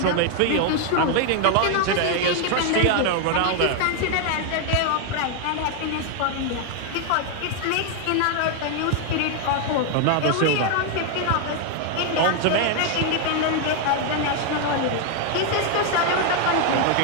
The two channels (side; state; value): both; different; correlation 0.00